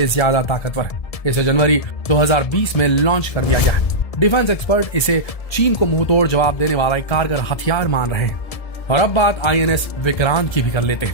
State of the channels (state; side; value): late; right; 1.7 ms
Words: ज्यादा ताकतवर है। इसे जनवरी 2020 में लॉन्च कर दिया गया है। डिफेंस एक्सपर्ट इसे चीन को मुंहतोड़ जवाब देने वाला एक कारगर हथियार मान रहे हैं। और अब बात INS विक्रांत की भी कर लेते